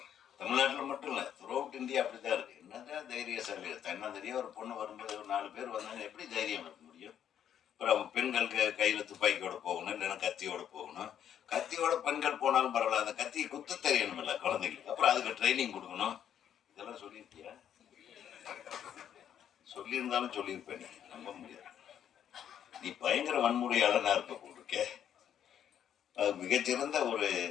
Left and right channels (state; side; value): quieter; right; 9.6 dB